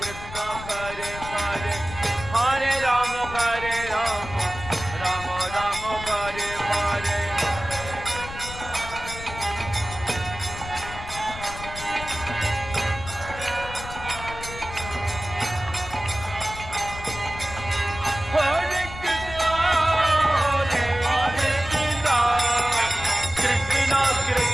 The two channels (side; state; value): left; noise; rumble, 12 dB below the sound